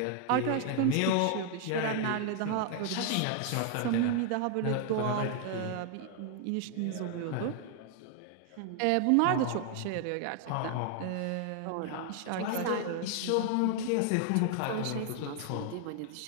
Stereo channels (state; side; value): different; both; correlation 0.00